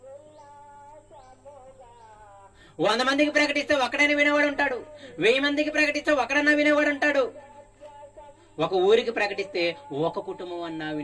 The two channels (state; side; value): identical; both; correlation 1.00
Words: 100 మందికి ప్రకటిస్తే ఒక్కడైనా వినేవాడు ఉంటాడు, 1000 మందికి ప్రకటిస్తే ఒకడన్నా వినేవాడు ఉంటాడు, ఒక ఊరికి ప్రకటిస్తే ఒక కుటుంబం అన్నా